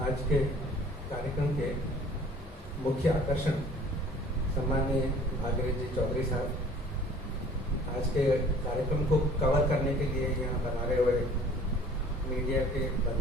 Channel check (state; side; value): normal; both; correlation 0.51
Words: आज के कार्यक्रम के मुख्य आकर्षण सम्माननीय भागीरथ जी चौधरी साहब, आज के कार्यक्रम को कवर करने के लिए यहाँ बनाए हुए मीडिया के